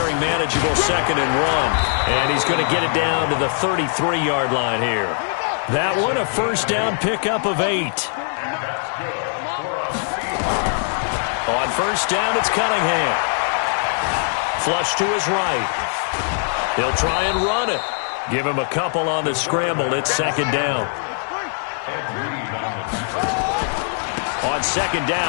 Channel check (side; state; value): right; silent; digital silence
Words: manageable 2nd and 1. And he's going to get it down to the 33-yard line here. That one a first down pickup of 8. On first down, it's Cunningham. Flush to his right. He'll try and run it. Give him a couple on the scramble. It's 2nd down. On 2nd